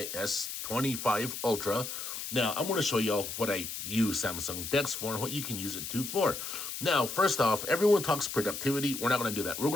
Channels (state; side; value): noise; left; hiss, 6 dB below the sound